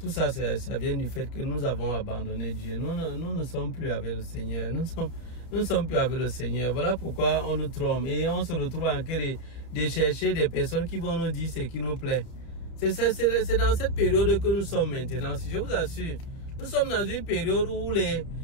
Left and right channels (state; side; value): late; right; 31 ms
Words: ça, ça vient du fait que nous avons abandonné Dieu. Nous ne sommes plus avec le Seigneur. Nous ne sommes plus avec le Seigneur. Voilà pourquoi on nous trompe. Et on se retrouve en train de chercher des personnes qui vont nous dire ce qui nous plaît. C'est dans cette période que nous sommes maintenant. Si je vous assure, nous sommes dans une période où